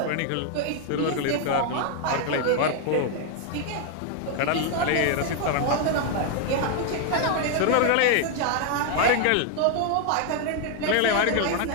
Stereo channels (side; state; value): both; different; correlation 0.00